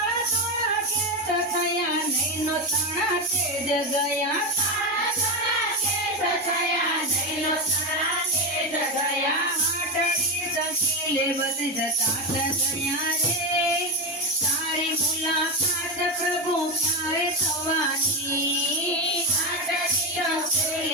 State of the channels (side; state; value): both; normal; correlation 0.13